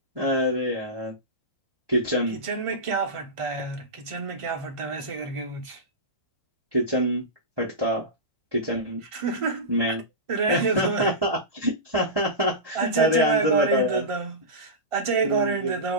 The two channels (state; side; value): late; left; 1.5 ms